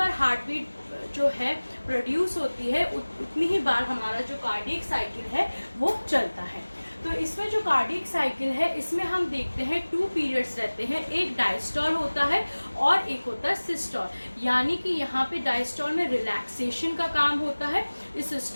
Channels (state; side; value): inverted; both; correlation -1.00